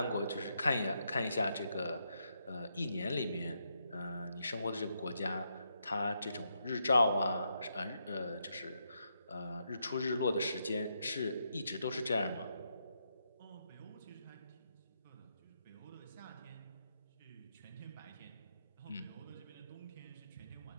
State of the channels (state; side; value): inverted; both; correlation -0.80